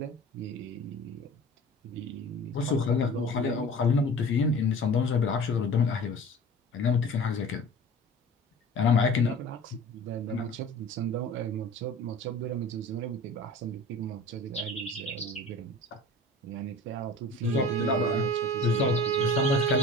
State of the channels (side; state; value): both; normal; correlation 0.40